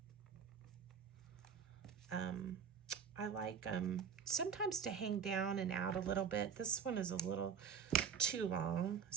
I like sometimes to hang down and out a little bit. This one is a little too long,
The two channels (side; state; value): left; quieter; 7.0 dB